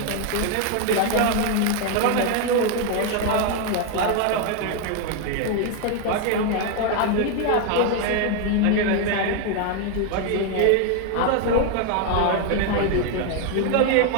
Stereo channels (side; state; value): both; different; correlation 0.01